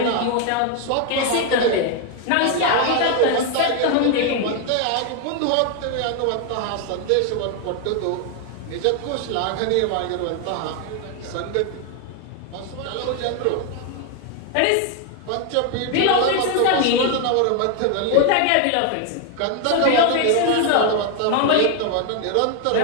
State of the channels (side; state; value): both; different; correlation 0.01